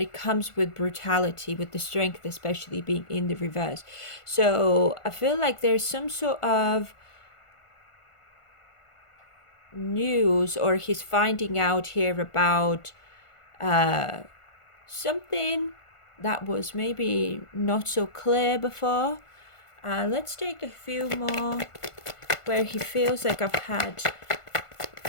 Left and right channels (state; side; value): late; right; 1.5 ms